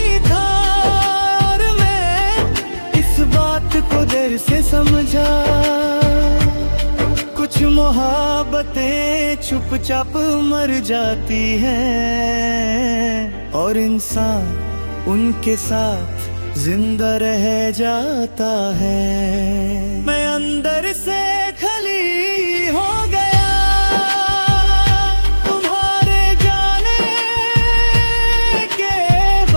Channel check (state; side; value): inverted; both; correlation -1.00